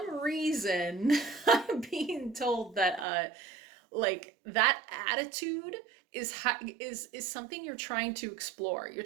reason I'm being told that like that attitude is something you're trying to explore. You're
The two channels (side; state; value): left; drops out; at 3.1 s